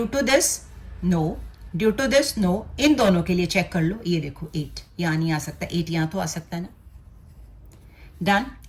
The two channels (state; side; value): identical; both; correlation 1.00